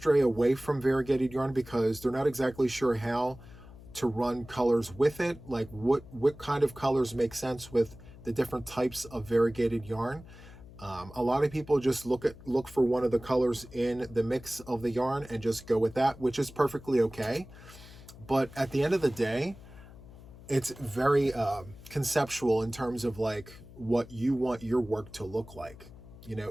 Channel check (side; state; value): left; noise; hum, 18 dB below the sound